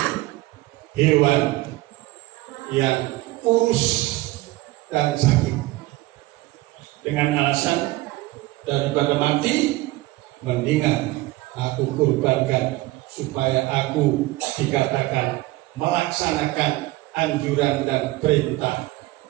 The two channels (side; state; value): left; quieter; 18.9 dB